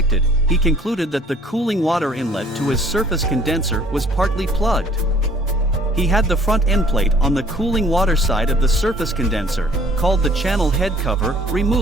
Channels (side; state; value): both; normal; correlation 0.56